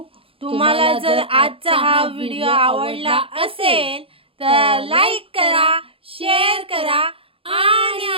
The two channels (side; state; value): left; late; 0.27 ms